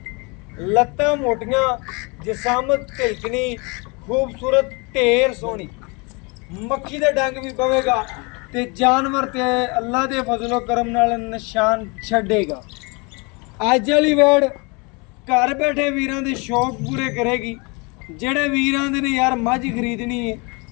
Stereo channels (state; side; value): quieter; right; 29.6 dB